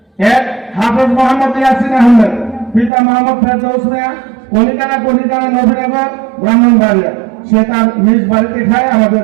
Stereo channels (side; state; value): left; drops out; at 2.9 s